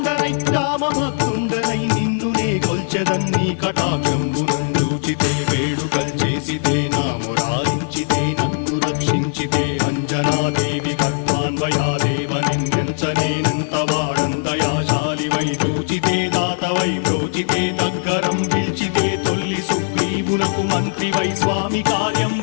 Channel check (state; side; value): silent; right; digital silence